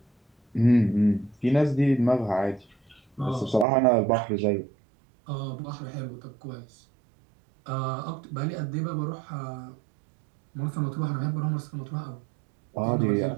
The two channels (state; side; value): drops out; left; at 3.7 s